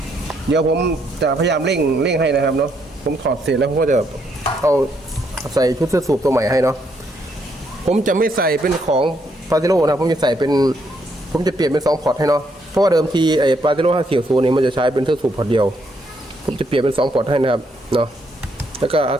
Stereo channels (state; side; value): normal; both; correlation 0.74